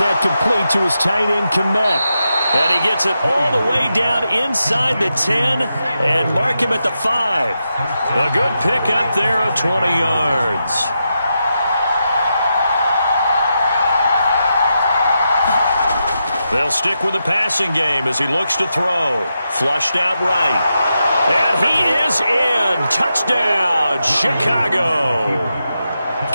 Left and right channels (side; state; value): both; inverted; correlation -0.87